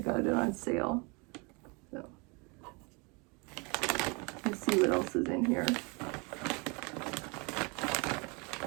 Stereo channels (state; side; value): quieter; left; 30.4 dB